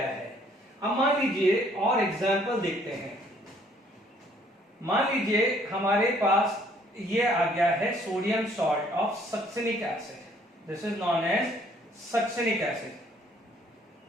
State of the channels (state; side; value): normal; both; correlation 0.62